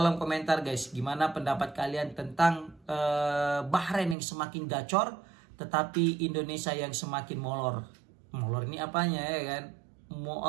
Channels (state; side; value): drops out; left; at 4.2 s